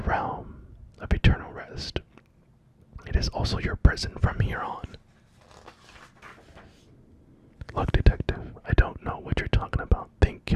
realm of eternal rest. It is also your prison from here on. Look, detective, I don't know what you're talking about. Think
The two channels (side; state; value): both; identical; correlation 1.00